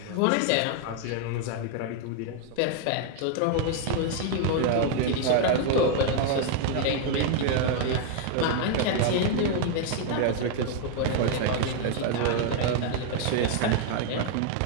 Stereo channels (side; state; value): both; different; correlation 0.00